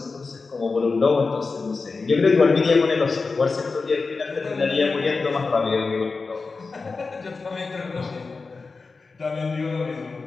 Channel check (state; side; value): quieter; right; 4.2 dB